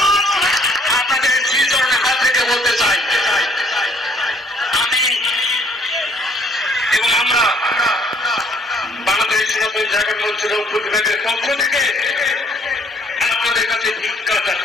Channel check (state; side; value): normal; both; correlation 0.62